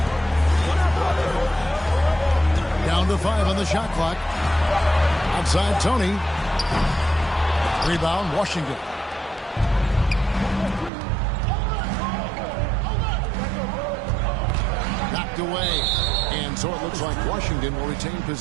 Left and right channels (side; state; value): left; drops out; at 10.9 s